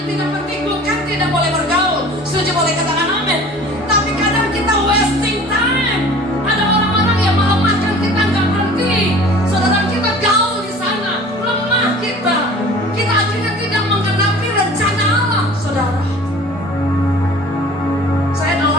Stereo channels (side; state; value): both; normal; correlation 0.45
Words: tidak penting. Bukan tidak boleh bergaul, setuju boleh katakan amin. Tapi kadang kita wasting time. Ada orang-orang yang melemahkan kita, nggak berhenti. Saudara, kita gaul di sana, lemah kita. Kita akhirnya tidak menggenapi rencana Allah. Saudara, saya adalah